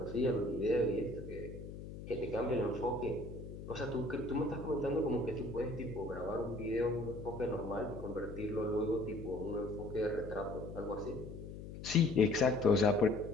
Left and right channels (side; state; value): left; noise; hum, 11 dB below the sound